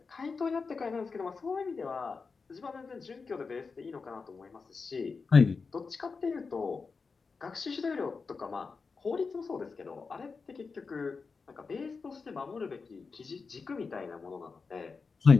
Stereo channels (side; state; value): right; quieter; 4.7 dB